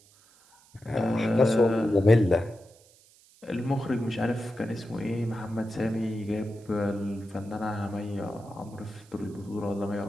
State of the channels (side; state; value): right; noise; hiss, 28 dB below the sound